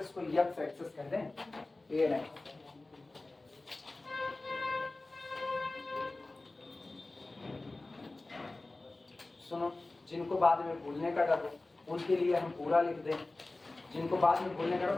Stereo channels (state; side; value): quieter; right; 3.1 dB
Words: को यक्स एक्सेस कहते हैं, ए एंड एक्स। सुनो, जिनको बाद में भूलने का डर हो उनके लिए हम पूरा लिख दें, जिनको बाद में भूलने का डर